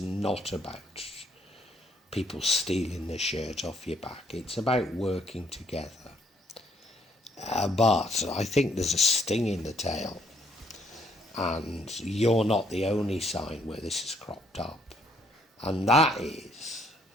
not about people stealing the shirt off your back, it's about working together. But I think there's a sting in the tail, and you're not the only sign where this has cropped up, and that is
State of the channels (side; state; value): both; normal; correlation 0.68